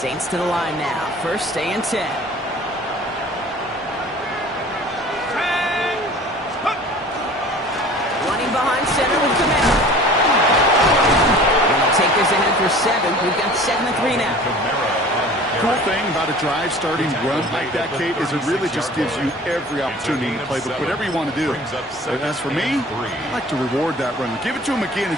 to the line now. 1st and 10. Running behind center with Camara. And they'll take this ahead for 7. We've got 7-3 now. Camara on the Cool thing about a drive starting run like that, Kate, is it really just gives you every opportunity to play whatever you want to do. But as for me, I like to reward that run. Give it to him again and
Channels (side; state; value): both; normal; correlation 0.45